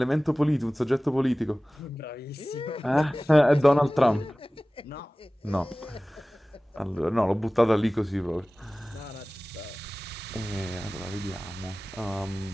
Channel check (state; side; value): normal; both; correlation 0.98